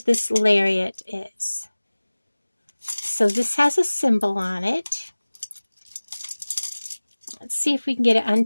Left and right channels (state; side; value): inverted; both; correlation -1.00